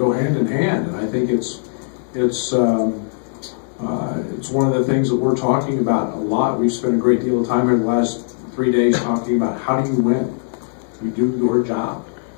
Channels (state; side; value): silent; right; digital silence